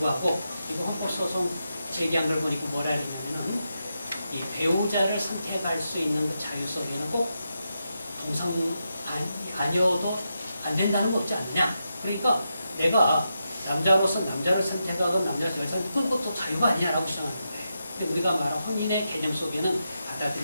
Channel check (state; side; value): inverted; both; correlation -0.86